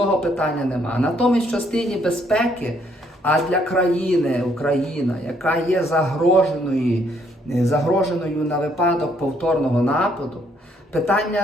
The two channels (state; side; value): normal; both; correlation 0.69